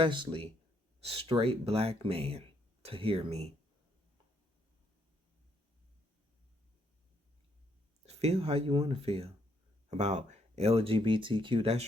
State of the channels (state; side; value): normal; both; correlation 0.72